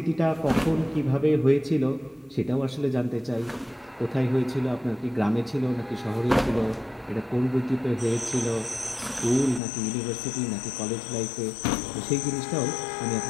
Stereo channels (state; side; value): drops out; right; at 9.6 s